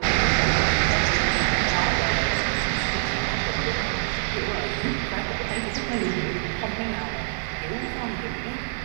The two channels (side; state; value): left; silent; digital silence